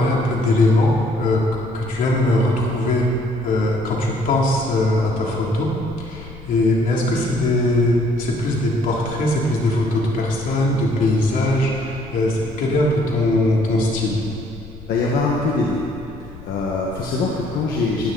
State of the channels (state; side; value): noise; left; rumble, 17 dB below the sound